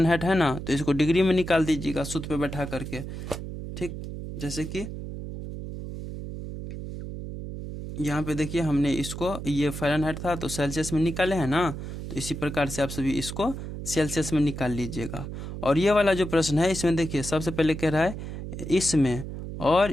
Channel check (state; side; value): noise; right; hum, 8 dB below the sound